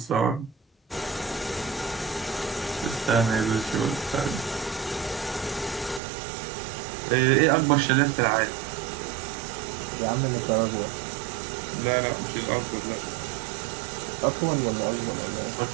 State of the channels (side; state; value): left; drops out; at 6.0 s